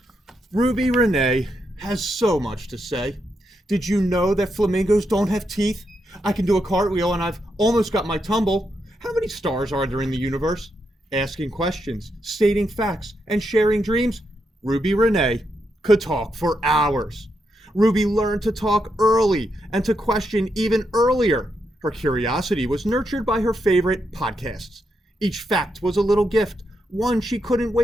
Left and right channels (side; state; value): both; normal; correlation 0.82